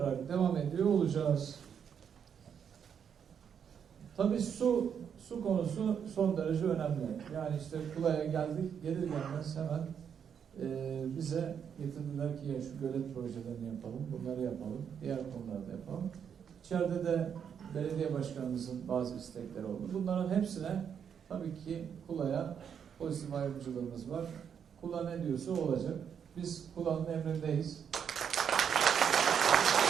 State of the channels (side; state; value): left; quieter; 7.7 dB